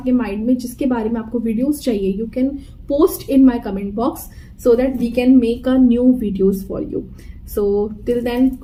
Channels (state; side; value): identical; both; correlation 1.00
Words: माइंड में जिसके बारे में आपको वीडियोस चाहिए, you can post in my comment box so that we can make a new videos for you. So till then,